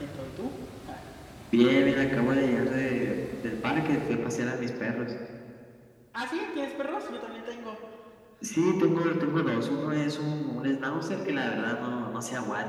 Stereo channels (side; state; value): both; identical; correlation 1.00